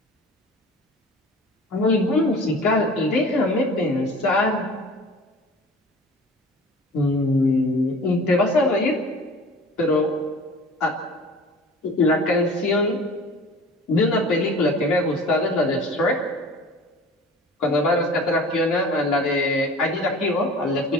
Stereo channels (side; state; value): both; normal; correlation 0.42